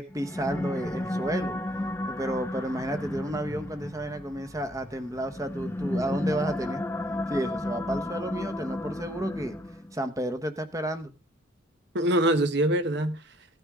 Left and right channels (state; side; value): normal; both; correlation 0.64